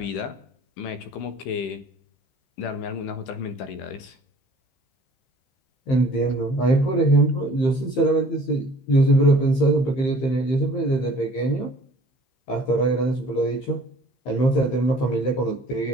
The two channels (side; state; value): right; late; 15 ms